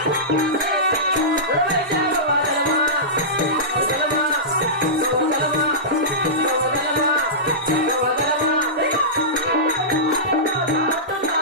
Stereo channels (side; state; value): both; normal; correlation -0.18